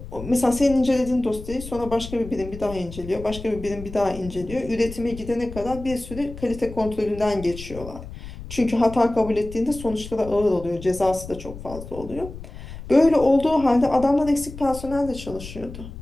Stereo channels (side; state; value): left; noise; rumble, 13 dB below the sound